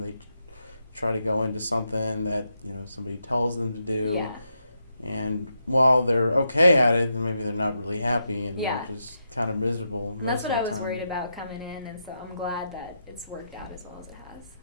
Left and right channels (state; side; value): inverted; both; correlation -0.83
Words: try to go into something that somebody tells them to do, and while they're okay at it, then maybe they're not really happy, and they're just kind of miserable most of the time. That's what I was worried about coming in, and so I'm glad that it's worked out as well as it has.